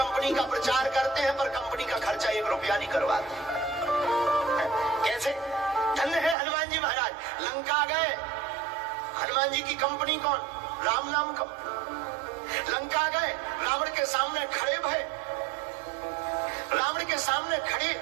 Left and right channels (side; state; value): left; drops out; at 6.4 s